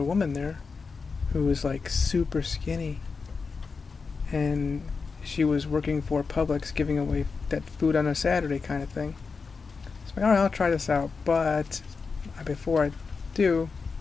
woman there who was like super skinny, and she was working for Publix, giving away that food on a Saturday kind of thing. So I'm like, all right, I'll try this out, but before I do,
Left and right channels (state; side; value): quieter; right; 4.9 dB